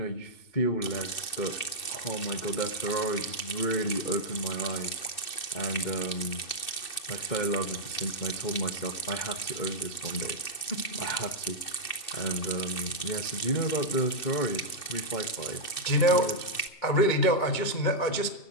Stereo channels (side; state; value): right; late; 2.7 ms